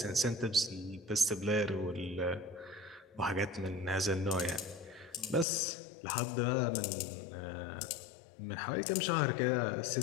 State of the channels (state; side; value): drops out; right; at 5.5 s